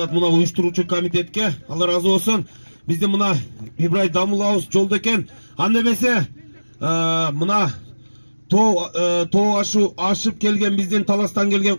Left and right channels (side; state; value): both; inverted; correlation -1.00